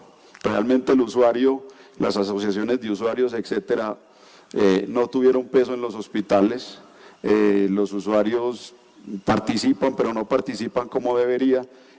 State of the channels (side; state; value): both; identical; correlation 1.00